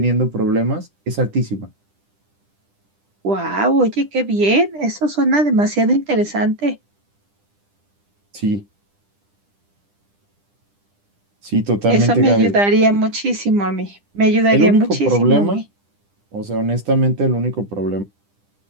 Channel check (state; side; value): late; left; 10 ms